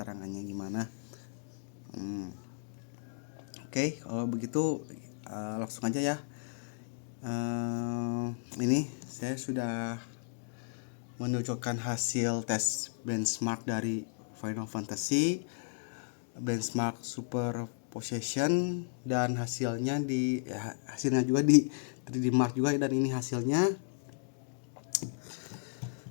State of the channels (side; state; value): right; silent; digital silence